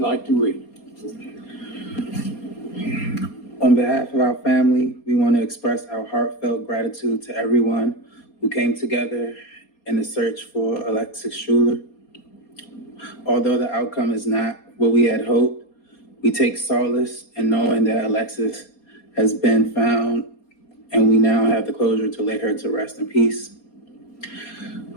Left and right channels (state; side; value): late; right; 4.2 ms